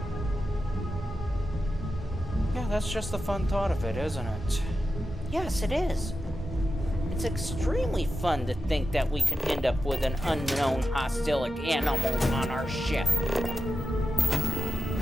Yeah, that's just the fun thought of it, isn't it? Yes, it is. It's extremely fun to think that we could end up with an unknown hostile animal on our ship.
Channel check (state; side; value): normal; both; correlation 0.90